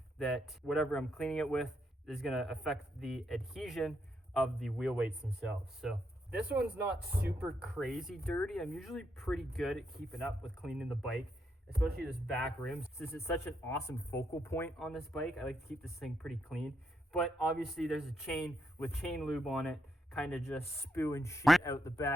that whatever I'm cleaning it with is going to affect the adhesion of the wheel weights themselves. So this one's not super crazy dirty. I'm usually pretty good at keeping up with cleaning the bike, especially this back rim. Since it's such an awesome focal point on this bike, I like to keep this thing pretty clean. But obviously there's a chain with chain lube on it, kind of just spewing shit out the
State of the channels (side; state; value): both; normal; correlation 0.79